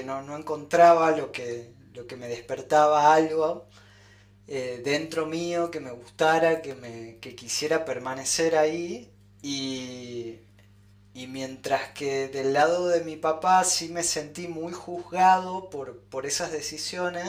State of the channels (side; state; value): both; identical; correlation 1.00